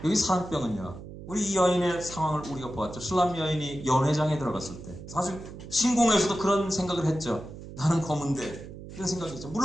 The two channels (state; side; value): noise; right; hum, 13 dB below the sound